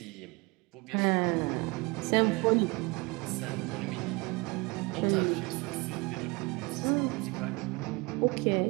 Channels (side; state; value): left; quieter; 26.7 dB